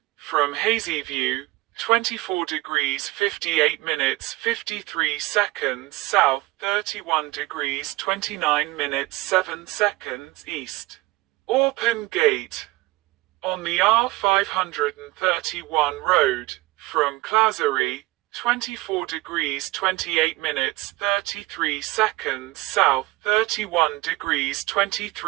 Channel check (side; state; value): left; quieter; 20.3 dB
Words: from Hazyview, 24 degrees 58 minutes 53 seconds south, 31 degrees 29 minutes 7 seconds east. Orpen Gate, on the R531 road, from Clazery, 24 degrees 28 minutes 33 seconds south, 31 degrees